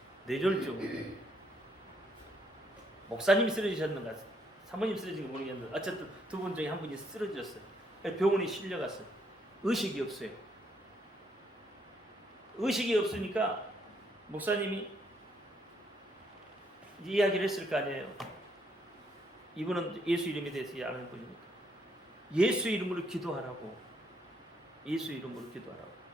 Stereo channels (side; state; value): both; normal; correlation 0.72